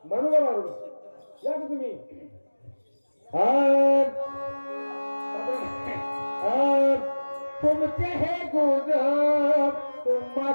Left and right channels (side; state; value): both; inverted; correlation -1.00